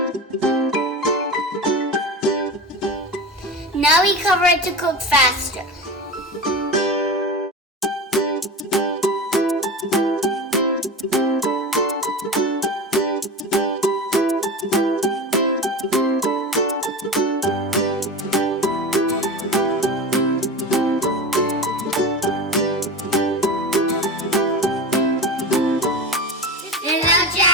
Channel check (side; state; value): both; normal; correlation 0.28